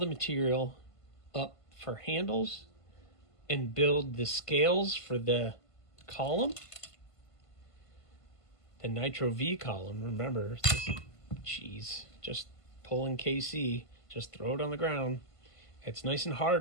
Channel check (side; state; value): right; late; 1.5 ms